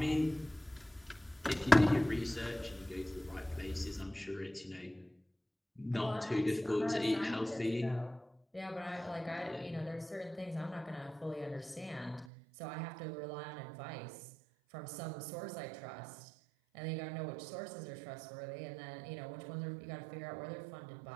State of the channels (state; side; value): drops out; left; at 12.2 s